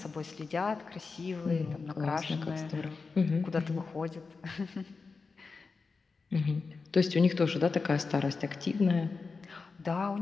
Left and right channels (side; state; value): right; quieter; 4.5 dB